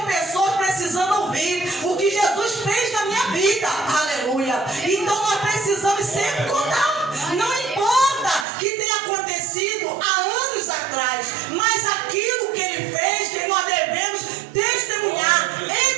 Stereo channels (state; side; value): drops out; left; at 8.5 s